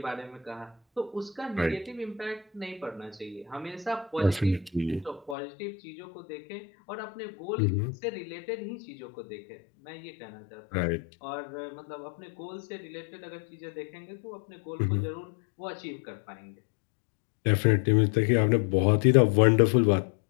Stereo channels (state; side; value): drops out; right; at 5.4 s